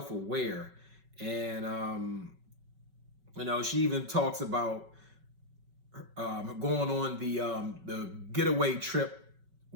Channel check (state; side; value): late; left; 5.3 ms